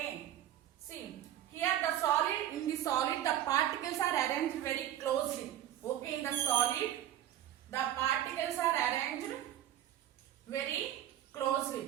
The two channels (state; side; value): quieter; left; 12.0 dB